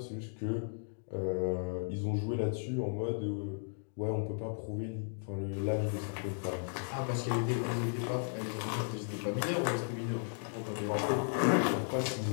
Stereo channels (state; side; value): silent; right; digital silence